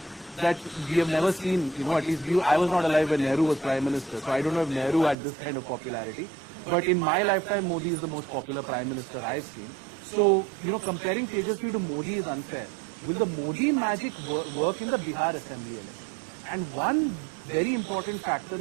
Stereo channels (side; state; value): left; drops out; at 5.2 s